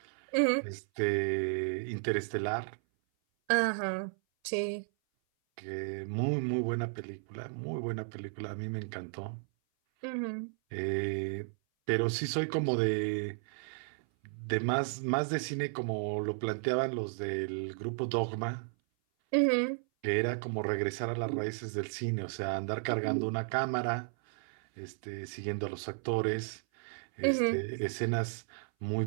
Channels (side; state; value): left; silent; 55 dB below the other